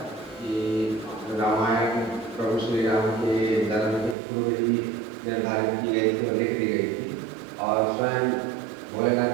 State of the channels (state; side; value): drops out; left; at 4.2 s